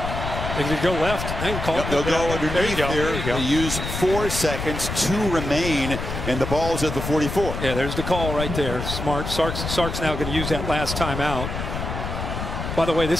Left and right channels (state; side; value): noise; left; rumble, 5 dB below the sound